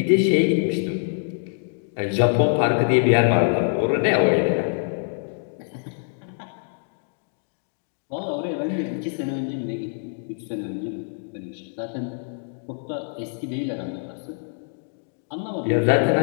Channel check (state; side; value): silent; right; digital silence